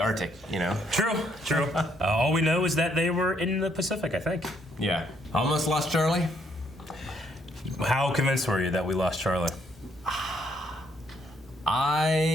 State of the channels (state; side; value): normal; both; correlation 0.70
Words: you know. True. All we know is that they were in the Pacific, I think. Yeah. Almost lost Charlie. How convinced were you that we lost Charlie?